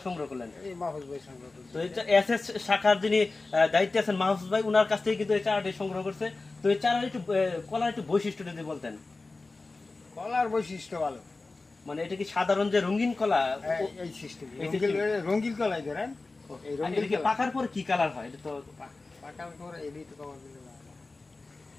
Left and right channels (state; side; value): quieter; right; 3.5 dB